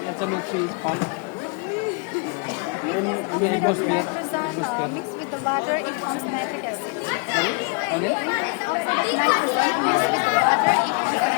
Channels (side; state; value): right; quieter; 32.4 dB